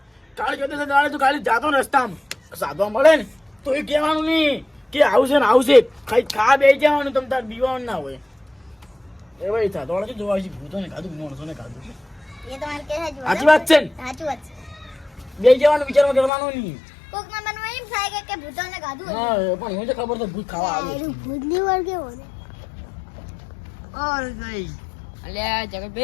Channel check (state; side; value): drops out; right; at 16.3 s